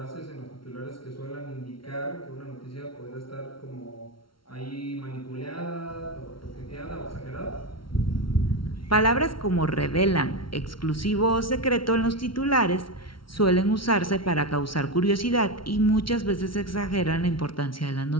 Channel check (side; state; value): right; late; 0.74 ms